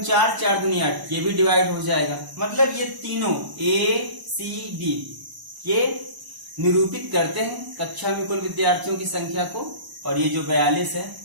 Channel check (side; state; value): left; late; 1.0 ms